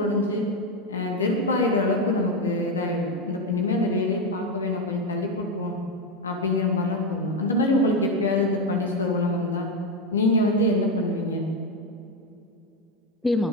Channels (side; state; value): both; normal; correlation 0.08